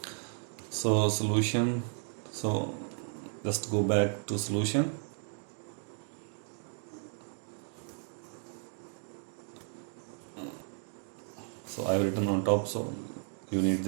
So solution, so just go back to solution. So I have written on top, so you need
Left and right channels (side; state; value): left; silent; 55 dB below the other